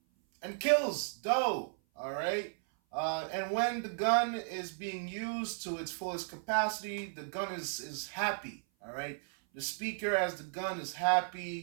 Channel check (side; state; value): left; silent; 55 dB below the other